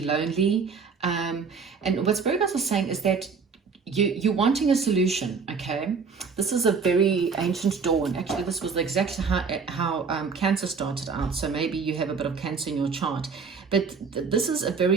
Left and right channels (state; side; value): quieter; left; 5.3 dB